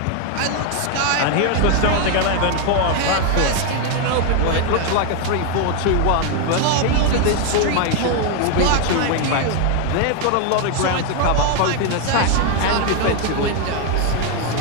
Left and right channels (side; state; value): both; different; correlation 0.01